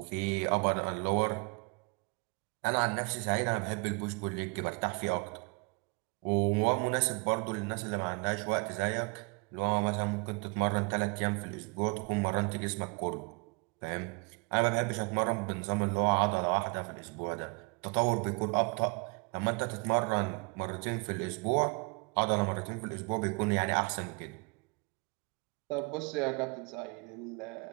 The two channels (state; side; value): quieter; left; 31.1 dB